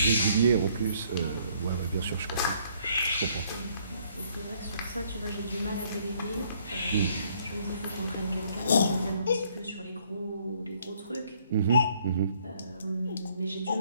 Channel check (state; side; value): inverted; both; correlation -0.65